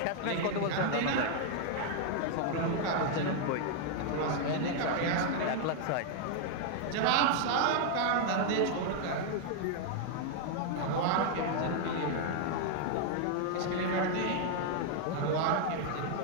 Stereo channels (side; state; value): both; different; correlation 0.00